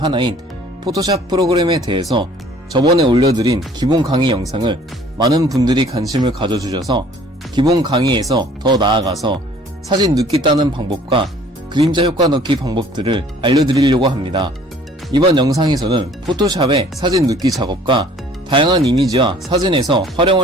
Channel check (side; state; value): both; normal; correlation 0.54